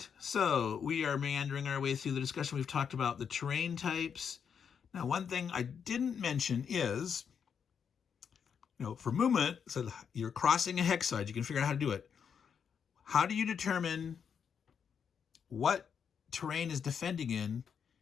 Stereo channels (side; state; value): right; quieter; 7.1 dB